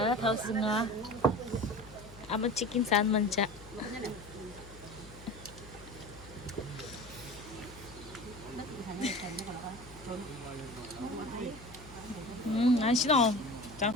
타우스가 아마 치킨 산 만자. 안 싫어. 자.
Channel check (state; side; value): noise; left; hum, 18 dB below the sound